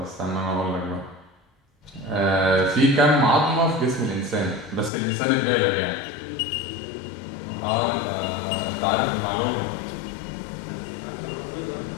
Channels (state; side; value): drops out; right; at 4.9 s